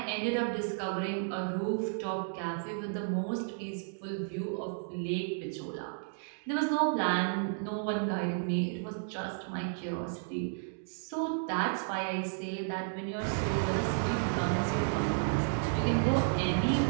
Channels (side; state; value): left; silent; digital silence